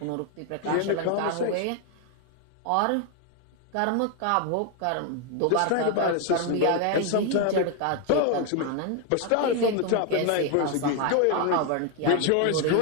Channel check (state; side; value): different; both; correlation 0.01